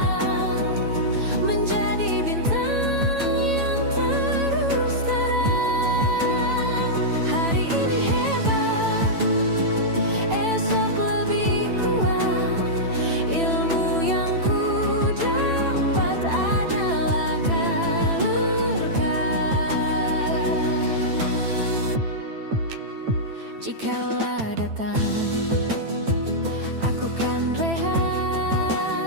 menjadi bintang yang terus terang. Hari ini hebat, esok lebih kuat. Ilmu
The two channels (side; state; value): left; late; 9.0 ms